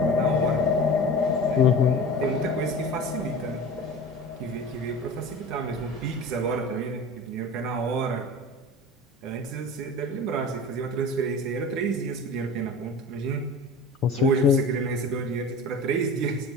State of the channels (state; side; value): normal; both; correlation 0.36